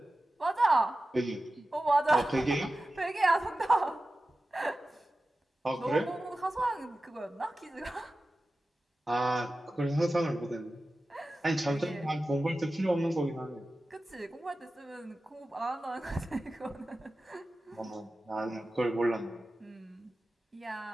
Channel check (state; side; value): normal; both; correlation 0.94